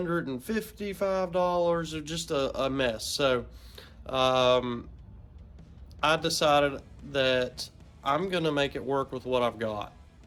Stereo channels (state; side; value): identical; both; correlation 1.00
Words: or just a mess. So I decided that I'm gonna make it work with what I've got.